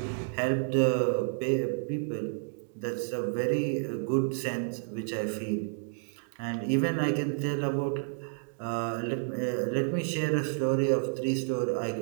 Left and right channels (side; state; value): left; silent; digital silence